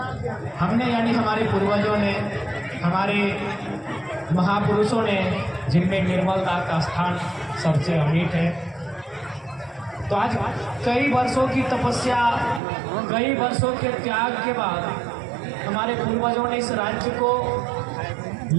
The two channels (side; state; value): left; drops out; at 12.6 s